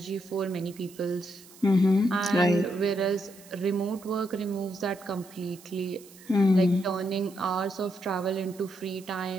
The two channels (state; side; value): noise; right; hiss, 22 dB below the sound